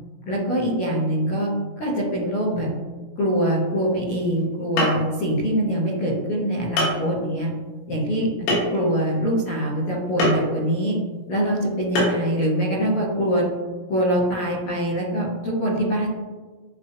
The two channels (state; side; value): late; right; 17 ms